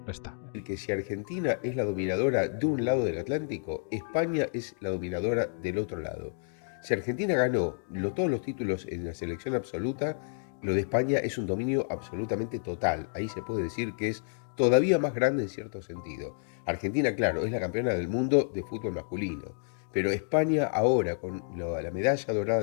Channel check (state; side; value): silent; right; digital silence